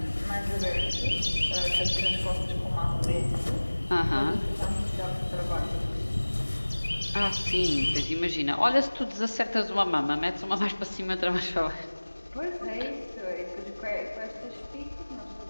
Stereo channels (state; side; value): inverted; both; correlation -1.00